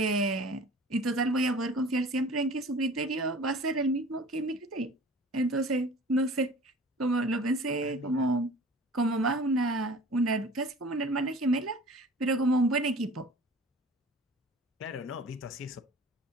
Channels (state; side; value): normal; both; correlation 0.44